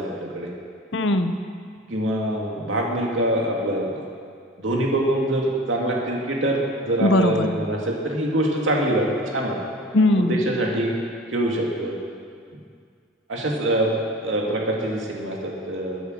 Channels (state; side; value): normal; both; correlation 0.40